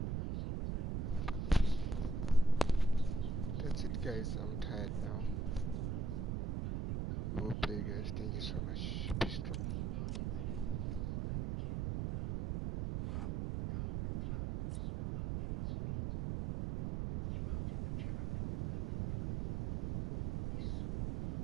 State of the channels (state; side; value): noise; right; rumble, 1 dB below the sound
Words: Guys, I'm tired now. We'll play, guys. Thank you so much. Be strong.